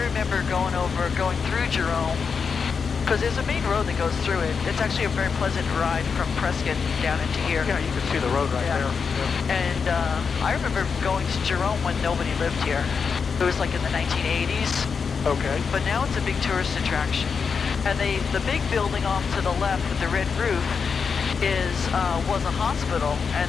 going through Jerome, because there's a main road that goes through it. It's actually a very pleasant ride from Prescott down into here. Yeah, you can see the road right there. Yeah. And I remember going to Jerome when nobody lived here. It was like in the 1980s. Okay. But now it's a big tourist attraction. And the big building off to the left with the red roof was a hospital,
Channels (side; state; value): right; quieter; 5.8 dB